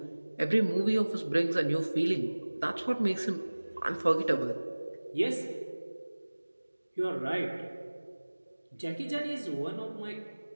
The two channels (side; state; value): both; inverted; correlation -1.00